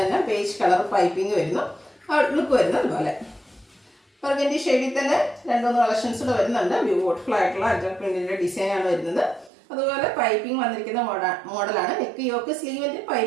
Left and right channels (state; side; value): drops out; left; at 9.5 s